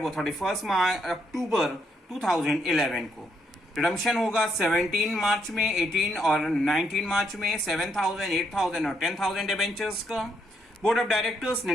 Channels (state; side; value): normal; both; correlation 0.75